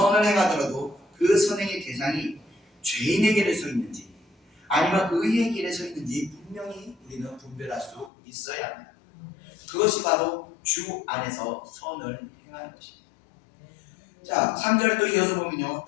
행하더라도 그 선행의 대상이 죄인의 길에 서 있는지 아니면 의의 길에 서 있는지 분명히 우리는 분별할 수 있어야 합니다. 그것이 바로 주 안에서 선을 행하는 것입니다. 자, 3절에 또 이어서 보면요,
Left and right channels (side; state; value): right; drops out; at 8.1 s